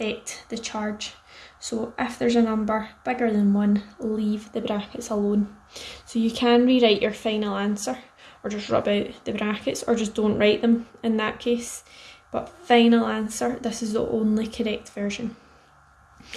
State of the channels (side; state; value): both; identical; correlation 1.00